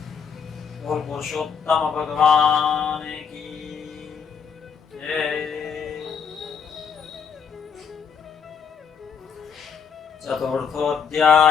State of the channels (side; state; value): right; quieter; 6.6 dB